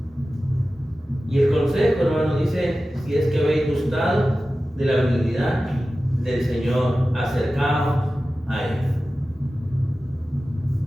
Y el consejo, hermano, dice, si es que habéis gustado de la benignidad del Señor, acercaos a Él.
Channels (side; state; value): both; normal; correlation 0.95